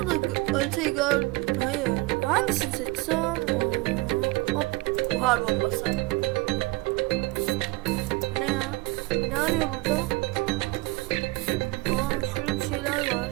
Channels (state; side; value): quieter; left; 23.2 dB